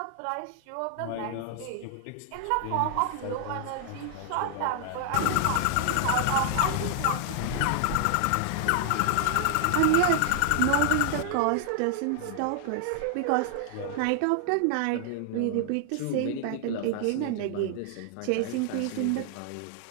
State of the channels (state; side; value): different; both; correlation 0.00